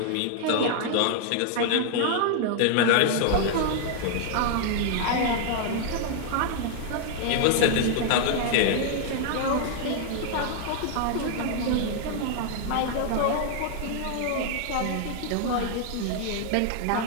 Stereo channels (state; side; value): different; both; correlation 0.00